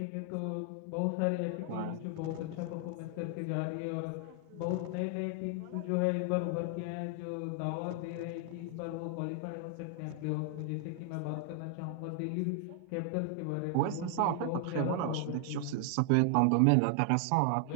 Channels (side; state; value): both; different; correlation 0.00